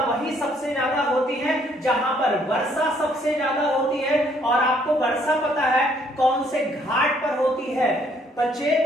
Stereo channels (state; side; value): normal; both; correlation 0.66